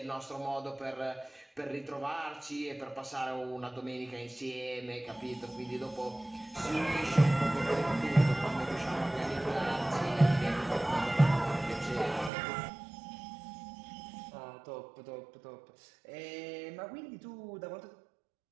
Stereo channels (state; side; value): drops out; left; at 12.3 s